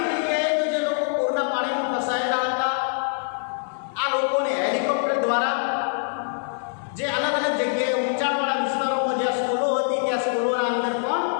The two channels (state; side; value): silent; right; 58 dB below the other